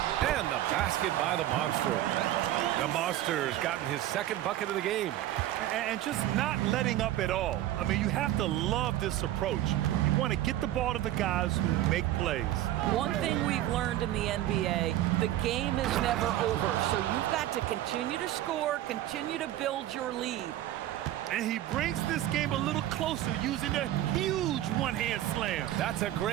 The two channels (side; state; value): left; quieter; 13.7 dB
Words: the basket by the Monster. The Monster's gotten his second bucket of the game. And just not letting up at all. I mean, you have to love this approach. You want to get the ball to the guys who make plays. One thing we've learned in the NBA, the game is never over. So you've got to continue to score, continue to build your lead. And he brings this game a little closer using a huge one-hand slam. That's a